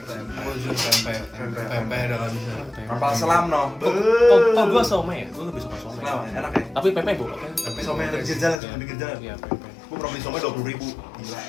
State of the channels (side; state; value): right; drops out; at 8.6 s